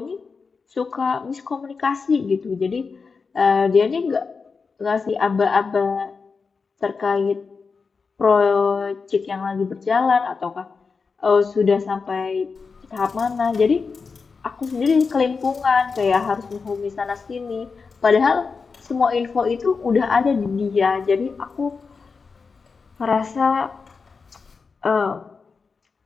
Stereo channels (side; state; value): right; quieter; 4.9 dB